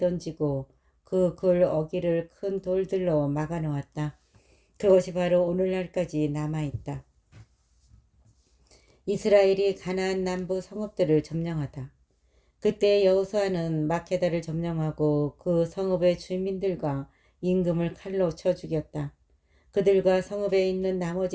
그 굴 어귀를 큰 돌들로 막아 놓았다. 그것이 바로 오늘날까지 남아있다. 이스라엘이 가나안 남부 성읍들을 점령하다. 그때 여호수아는 마케다를 점령하고 그 성읍의 주민들과 임금을 칼로 쳐 죽였다. 그들과 성읍에 있는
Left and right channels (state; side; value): identical; both; correlation 1.00